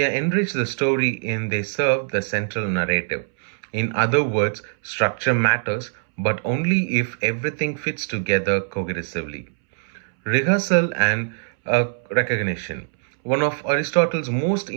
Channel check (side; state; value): left; silent; 64 dB below the other